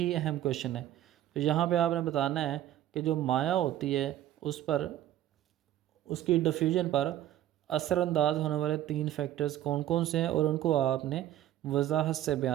अहम क्वेश्चन है। तो यहाँ पे आपने बताना है कि जो माया होती है उस पर, उसकी डिफ्यूजन पर असरअंदाज होने वाले 3 फैक्टर्स कौन कौन से हैं और उनको आपने वजाहत से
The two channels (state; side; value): quieter; left; 12.7 dB